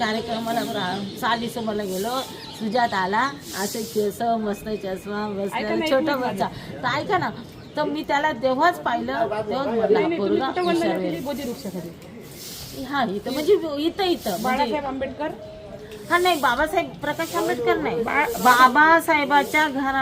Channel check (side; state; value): both; identical; correlation 1.00